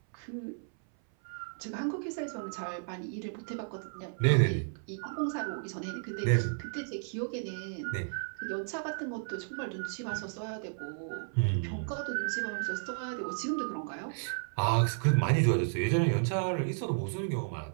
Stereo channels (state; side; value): silent; left; 56 dB below the other